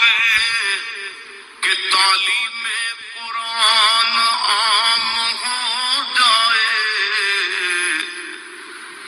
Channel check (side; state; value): both; identical; correlation 1.00